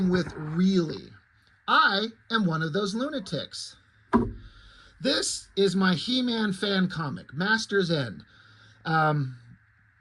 with, really. I am one of those lunatics. This is my He-Man fan comic, Master's End.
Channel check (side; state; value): both; identical; correlation 1.00